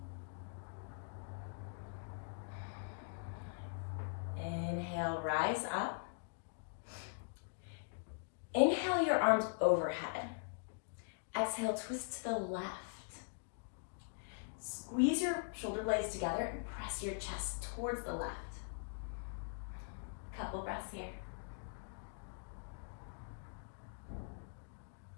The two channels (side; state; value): right; silent; digital silence